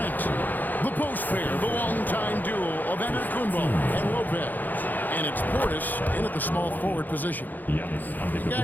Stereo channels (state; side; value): late; right; 0.085 ms